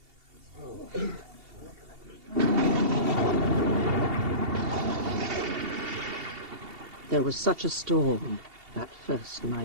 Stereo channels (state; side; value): late; left; 2.7 ms